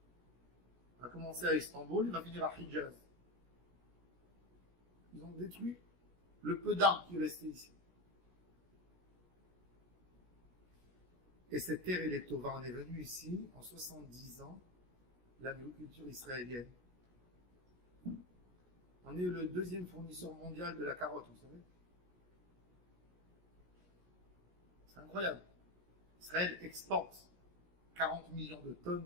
Il va commencer à Istanbul, il va finir à Hijaz. Ils ont détruit le peu d'arbres qui restaient ici. Et cette terre, elle est tova. On est venu ici en 70 ans, l'agriculture israélienne. On est le deuxième fournisseur mondial de la carotte, vous savez. C'est incroyable. Israël exporte 40 millions de tonnes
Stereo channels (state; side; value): late; left; 17 ms